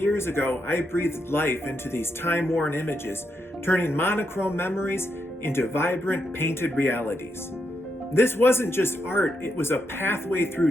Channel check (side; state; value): both; normal; correlation 0.82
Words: ago, I breathed life into these time-worn images, turning monochrome memories into vibrant, painted realities. This wasn't just art, it was a pathway